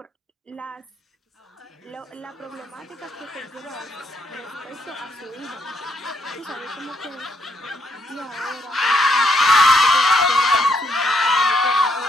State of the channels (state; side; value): normal; both; correlation 0.72